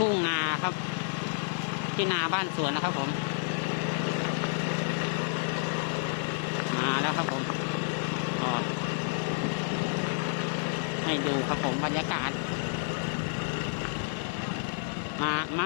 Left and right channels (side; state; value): right; silent; digital silence